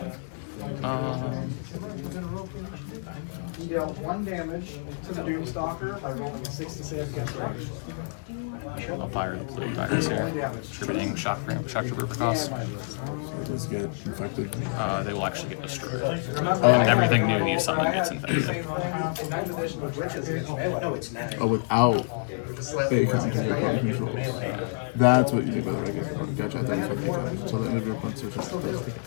You deal 1 damage to the Doom Stalker by rolling a 6 to save against range. I'll fire the blue dice here. Attributing shock trooper for cost. So these get infected. They will actually get destroyed. And everything new you summon gets infected. no, it's not. Oh, without a counter your opponent controls. That's what you mean by the regular component. Gotcha, I thought you said a counter. Until the end of your opponent's search.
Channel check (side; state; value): right; silent; digital silence